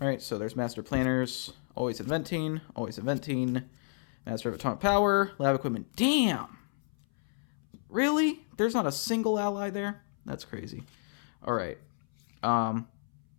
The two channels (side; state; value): right; silent; 57 dB below the other